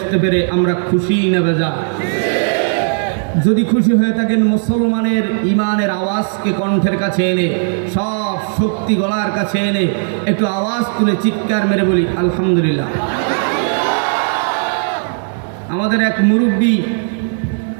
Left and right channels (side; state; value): left; silent; digital silence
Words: পেরে আমরা খুশি না বেজা যদি খুশি হয়ে থাকেন মুসলমানের ইমানের আওয়াজকে কণ্ঠের কাছে এনে সব শক্তি গলার কাছে এনে একটু আওয়াজ তুলে চিৎকার মেরে বলি আলহামদুলিল্লাহ। আমাদের এক মুরব্বী